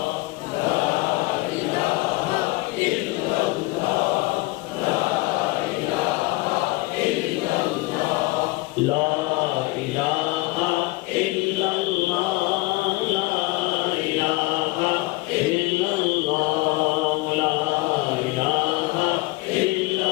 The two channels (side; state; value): right; quieter; 22.0 dB